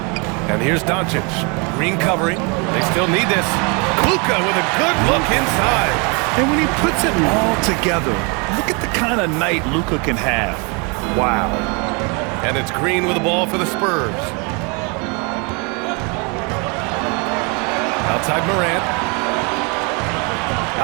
And here's Doncic. Green covering. They still need this. Luka with a good look inside. And when he puts it all together, look at the kind of night Luka can have. Wow. And it's Green with the ball for the Spurs. Outside Morant.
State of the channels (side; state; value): left; quieter; 32.2 dB